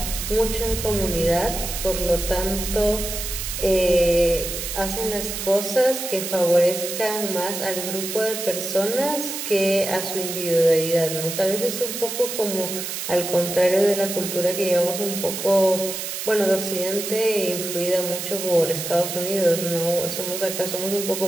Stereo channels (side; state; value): right; noise; hiss, 5 dB below the sound